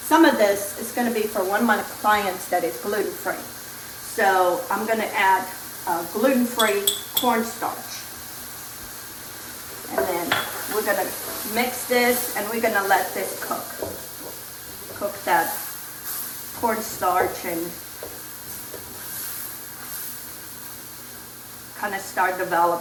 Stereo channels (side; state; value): both; identical; correlation 1.00